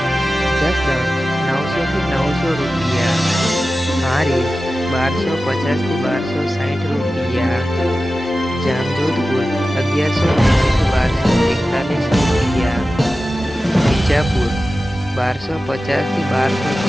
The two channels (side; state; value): both; normal; correlation 0.94